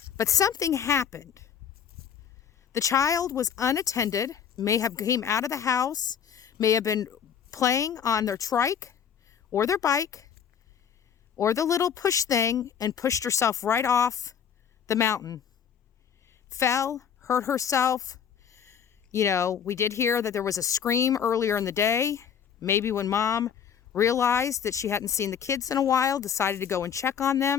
but something happened. The child was unattended, may have came out of the house, may have been playing on their trike or their bike or the little push thing and pushed herself right off the mountain. Fell, hurt herself. You know, we did hear that there was a scream earlier in the day. Maybe when mom realized that she hadn't seen the kids in a while, decided to go and check on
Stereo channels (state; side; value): quieter; right; 8.1 dB